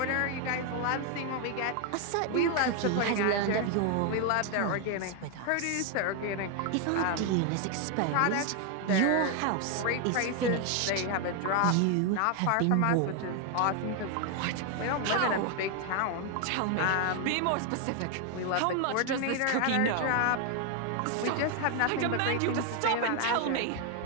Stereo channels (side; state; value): both; different; correlation 0.00